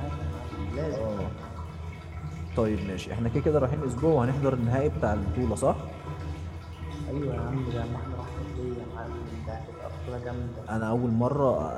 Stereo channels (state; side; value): identical; both; correlation 1.00